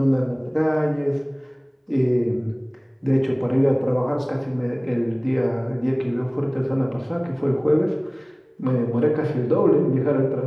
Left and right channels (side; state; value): both; identical; correlation 1.00